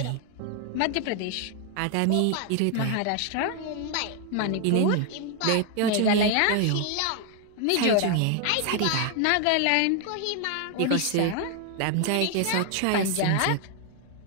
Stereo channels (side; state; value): both; different; correlation 0.00